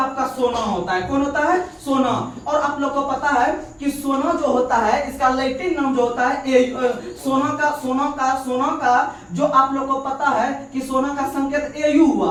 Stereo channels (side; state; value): both; identical; correlation 1.00